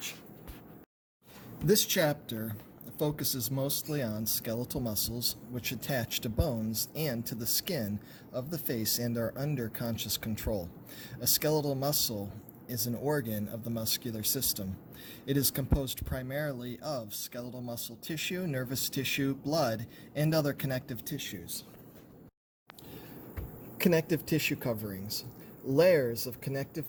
This chapter focuses mostly on skeletal muscles which attach to bones and to the skin of the face and are under conscious control. A skeletal muscle is an organ of the muscular system. It is composed primarily of skeletal muscle tissue, nervous tissue, blood, and other connective tissues. Connective tissue coverings. Layers of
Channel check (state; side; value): identical; both; correlation 1.00